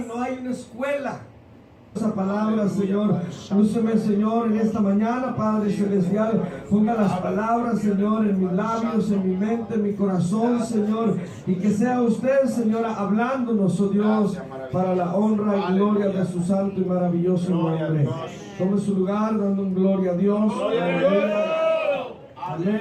No hay una escuela. Esa palabra, Señor, lúceme, Señor, en esta mañana, Padre Celestial. Ponga las palabras, Señor, en mis labios, en mi mente, en mi corazón, Señor. Y que sea usted, Señora, hablándonos, oh Dios, para la honra y gloria de su santo y maravilloso nombre. Tome su lugar, dando un gloria a Dios.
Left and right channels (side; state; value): both; identical; correlation 1.00